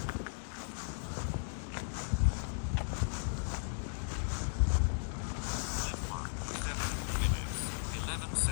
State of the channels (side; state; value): right; silent; digital silence